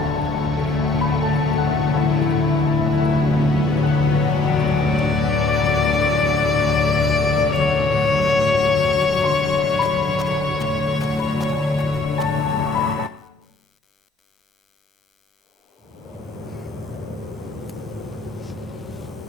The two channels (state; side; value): quieter; right; 3.2 dB